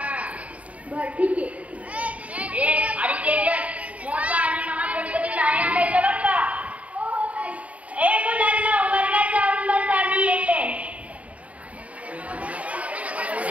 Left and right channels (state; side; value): late; left; 0.067 ms